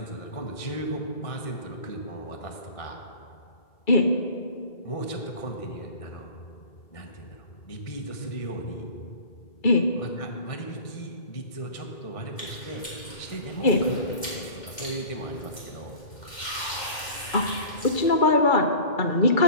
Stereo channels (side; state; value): right; late; 2.1 ms